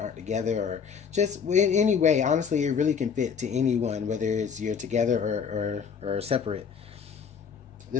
together, or just in any way, honestly, it really can fit to anyone, whether it's you're together or separate.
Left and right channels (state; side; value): quieter; right; 6.7 dB